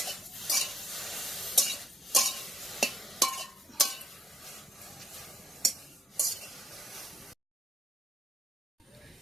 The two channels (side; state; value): both; normal; correlation 0.71